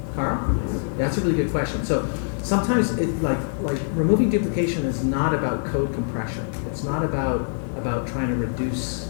Carl? Yeah, that's a really good question. So sometimes it like removing duplication is not about code compression. It's not about trying to reduce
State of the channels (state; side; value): silent; right; digital silence